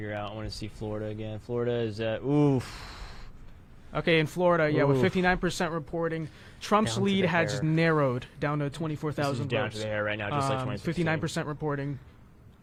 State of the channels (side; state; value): both; identical; correlation 1.00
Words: out. I want to see Florida again. Florida is at Okay, in Florida, with 59% reporting, Trump's lead has narrowed down to 24,000 votes. Down to the hair right now, just like 2016. 59% reporting.